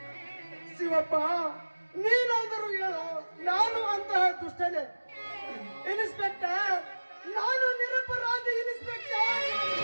ಶಿವಪ್ಪ, ನೀನಾದರೂ ಹೇಳು, ನಾನು ಅಂತಹ ದುಷ್ಟನೇ? ಇನ್ಸ್ಪೆಕ್ಟರ್, ನಾನು ನಿರಪರಾಧಿ ಇನ್ಸ್ಪೆಕ್ಟರ್.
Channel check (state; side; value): inverted; both; correlation -1.00